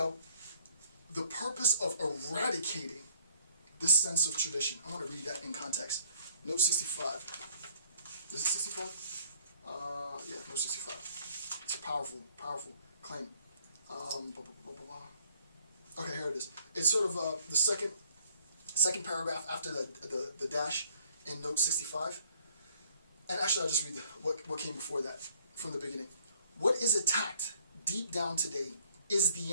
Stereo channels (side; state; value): both; inverted; correlation -0.60